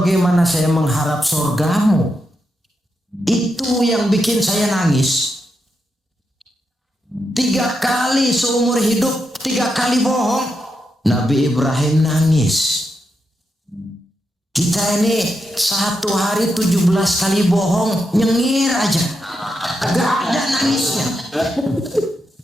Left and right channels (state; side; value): normal; both; correlation 0.84